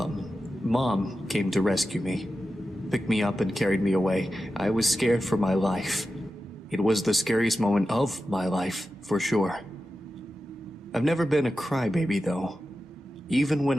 Mom came to rescue me. Picked me up and carried me away. I was scared for my life. It was the scariest moment of my life, for sure. I've never been a crybaby, though. Even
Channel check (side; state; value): both; normal; correlation 0.92